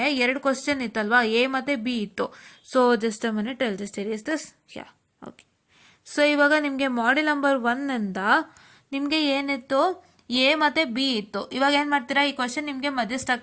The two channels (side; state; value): both; identical; correlation 1.00